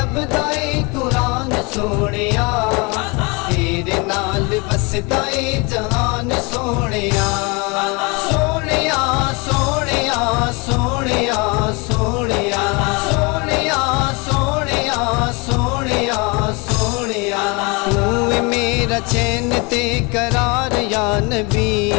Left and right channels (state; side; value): quieter; right; 28.7 dB